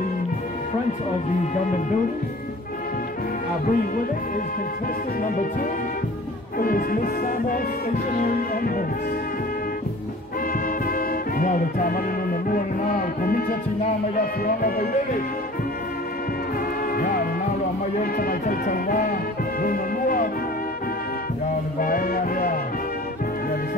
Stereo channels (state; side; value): normal; both; correlation 0.45